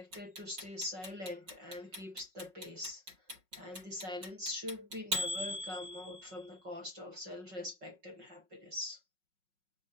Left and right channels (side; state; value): left; late; 5.4 ms